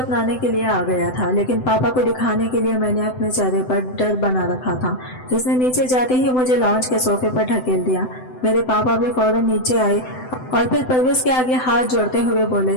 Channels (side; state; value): right; late; 7.9 ms